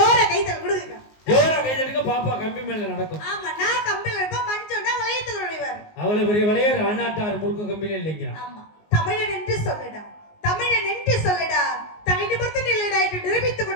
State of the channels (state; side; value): late; right; 19 ms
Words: கைதல் கொடுங்க, ஜோர கைதலுக்கு பாப்பா கம்பி மேல நடக்கும். ஆமா, நான் கம்பில இருப்பேன், மஞ்சோன்னா வளையத்தில் நுழைவார். அவ்வளவு பெரிய வளையர் அண்ணாட்டார் முறுக்கு கம்பில இல்லைங்க. ஆமா, தமிழன் என்று சொல்லடா, தமிழன் என்று சொல்லடா, தனி நிமிர்ந்து நில்லடா என்று நிரூபித்துக்